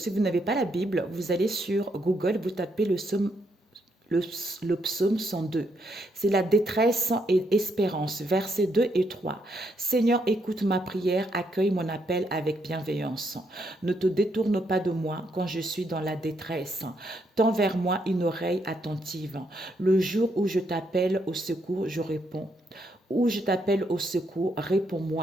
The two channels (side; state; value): both; normal; correlation 0.76